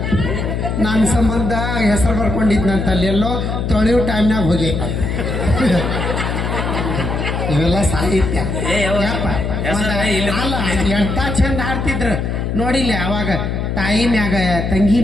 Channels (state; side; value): noise; left; hum, 1 dB below the sound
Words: ನನ್ನ ಸಂಬಂಧ ಹೆಸರು ಬರ್ಕೊಂಡಿದ್ನಂತ ಅಲ್ಲಿ ಎಲ್ಲೋ ತೊಳೆಯೋ ಟೈಮ್ನಾಗ ಹೋಗೈತ ಇವೆಲ್ಲ ಸಾಹಿತ್ಯ ಏ, ಯಾವ- ಯಪ್ಪ. ಹೆಸರ ಇಲ್ಲಿ- ಅಲ್ಲ ಎಂತ ಚಂದ ಹಾಡ್ತಿದ್ರು ನೋಡಿಲ್ಲ ಅವಾಗ ತಾಯಿ ಮ್ಯಾಗ ತಂಗಿ